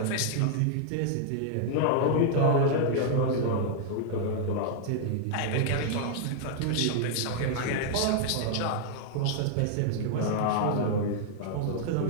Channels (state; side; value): different; both; correlation -0.01